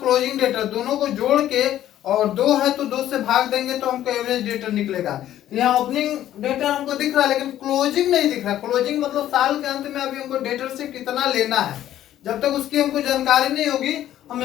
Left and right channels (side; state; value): right; quieter; 12.3 dB